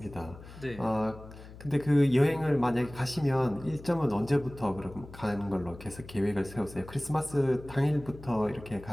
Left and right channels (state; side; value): noise; left; hum, 17 dB below the sound